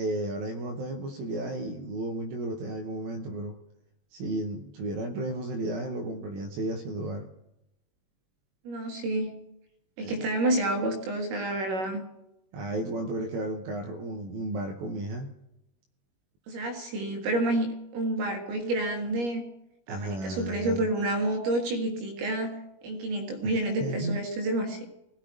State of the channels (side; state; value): left; late; 21 ms